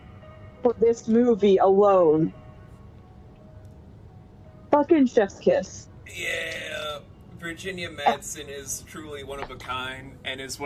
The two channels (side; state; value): both; identical; correlation 1.00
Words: for this movie alone. Fucking chef's kiss. Yeah, Virginia Madsen is truly one of a kind and is